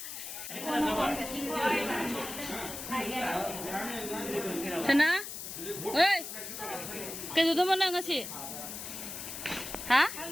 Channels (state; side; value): noise; left; hiss, 8 dB below the sound